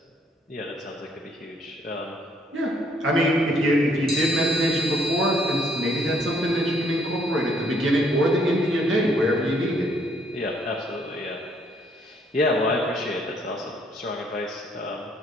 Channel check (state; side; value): normal; both; correlation 0.67